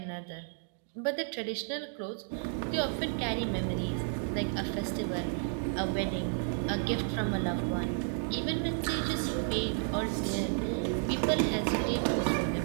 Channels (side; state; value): left; silent; 56 dB below the other